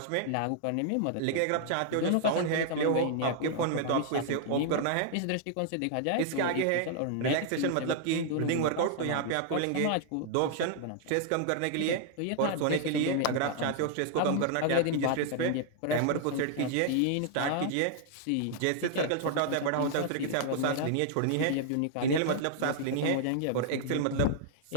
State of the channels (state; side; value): different; both; correlation -0.01